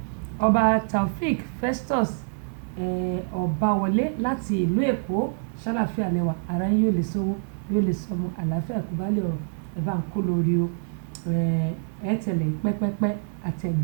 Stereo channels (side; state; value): left; silent; digital silence